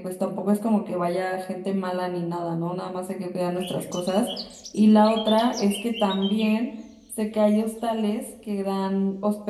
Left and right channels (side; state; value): both; identical; correlation 1.00